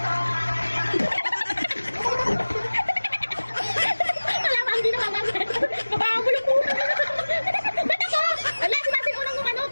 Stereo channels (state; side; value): inverted; both; correlation -1.00